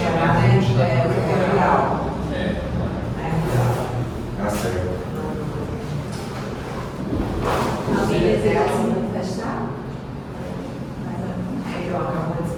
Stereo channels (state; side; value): identical; both; correlation 1.00